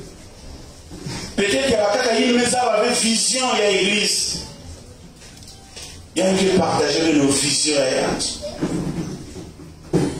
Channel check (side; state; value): both; identical; correlation 1.00